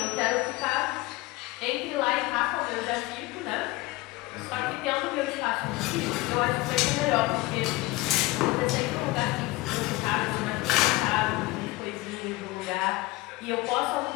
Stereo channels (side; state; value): right; quieter; 20.5 dB